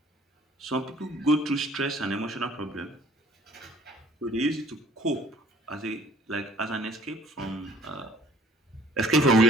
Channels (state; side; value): normal; both; correlation 0.55